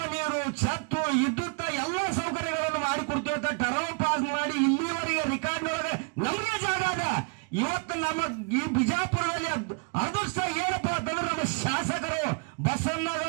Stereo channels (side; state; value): left; quieter; 33.4 dB